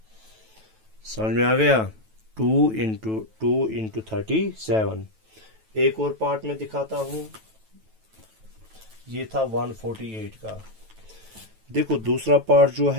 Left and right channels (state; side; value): late; left; 9.2 ms